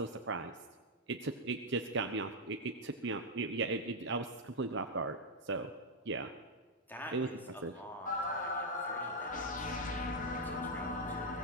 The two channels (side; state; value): both; normal; correlation -0.01